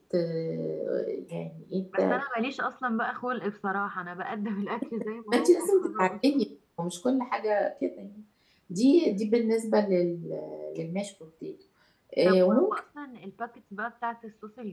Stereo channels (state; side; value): identical; both; correlation 1.00